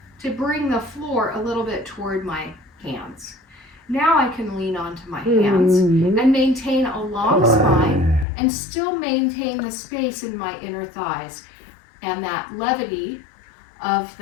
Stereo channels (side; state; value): right; drops out; at 8.2 s